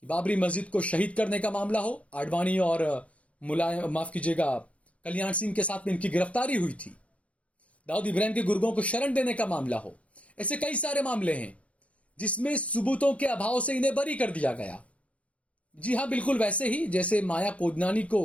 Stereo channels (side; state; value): right; late; 0.064 ms